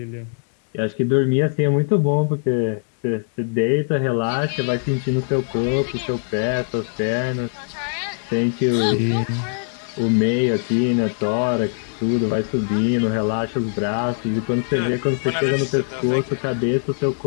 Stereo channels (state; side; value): silent; right; digital silence